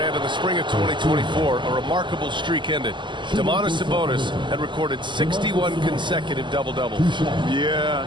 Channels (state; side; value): late; left; 0.23 ms